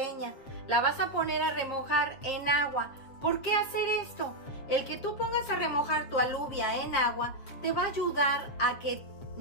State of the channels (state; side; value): late; right; 7.5 ms